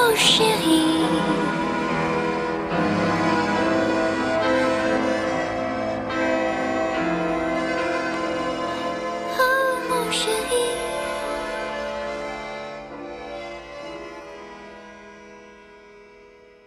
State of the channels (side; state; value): both; identical; correlation 1.00